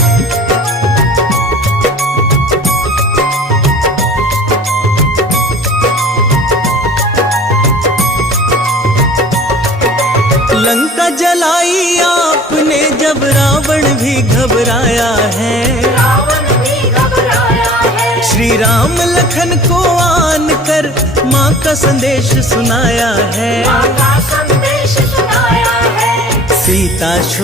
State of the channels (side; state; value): both; normal; correlation 0.45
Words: लंका जलाई आपने जब रावण भी घबराया है। रावण भी घबराया है। श्री राम लखन को आन कर माँ का संदेश सुनाया है। माँ का संदेश सुनाया है। सीता